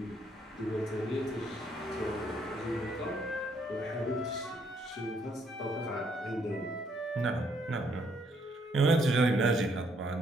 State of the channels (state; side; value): normal; both; correlation 0.70